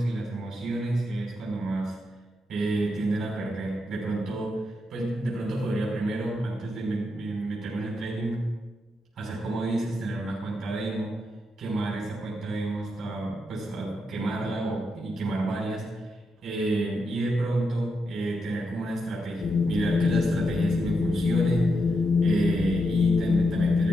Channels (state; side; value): normal; both; correlation 0.83